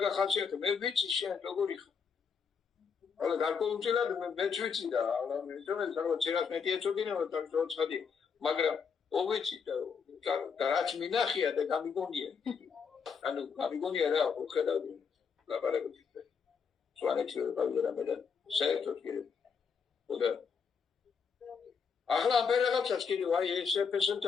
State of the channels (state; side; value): quieter; right; 6.0 dB